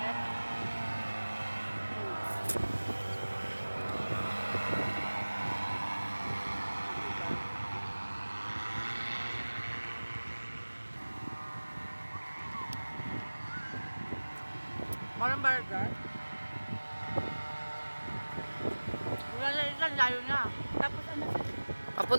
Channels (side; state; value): both; inverted; correlation -1.00